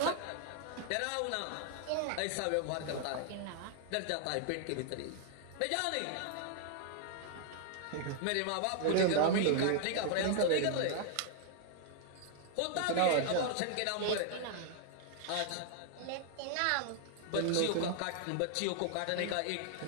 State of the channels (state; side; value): different; both; correlation 0.00